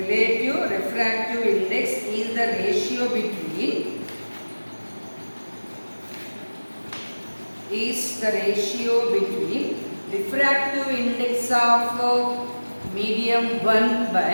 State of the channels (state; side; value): inverted; both; correlation -1.00